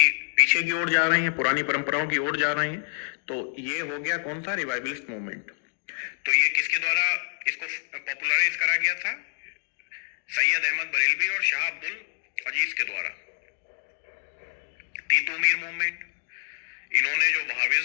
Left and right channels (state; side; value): silent; right; 60 dB below the other